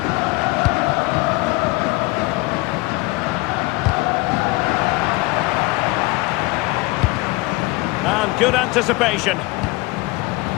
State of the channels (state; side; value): quieter; right; 22.6 dB